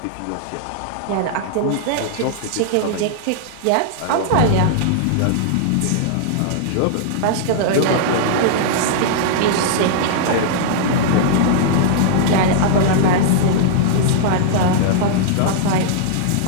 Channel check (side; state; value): both; different; correlation -0.01